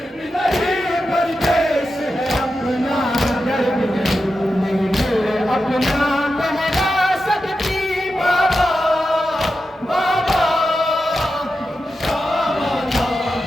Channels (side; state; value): both; normal; correlation 0.90